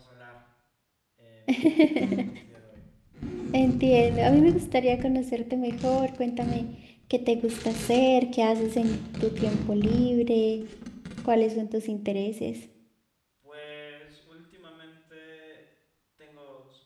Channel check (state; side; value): identical; both; correlation 1.00